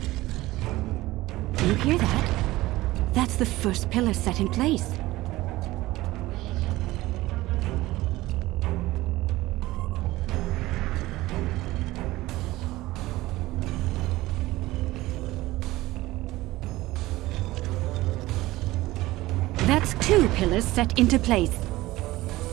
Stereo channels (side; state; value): left; quieter; 18.1 dB